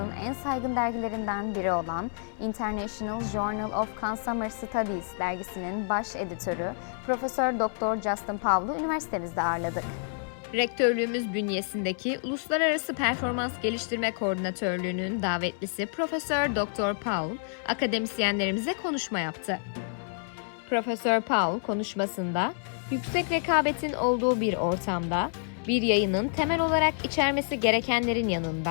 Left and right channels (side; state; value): right; silent; 59 dB below the other